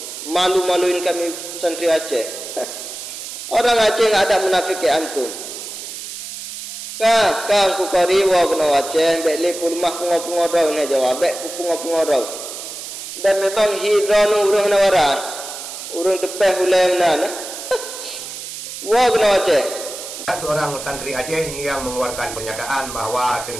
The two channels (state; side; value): noise; right; hiss, 9 dB below the sound